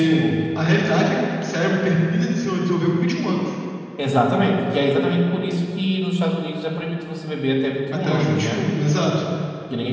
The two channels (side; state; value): both; identical; correlation 1.00